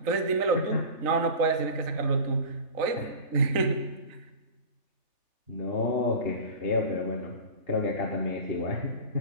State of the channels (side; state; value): left; late; 3.3 ms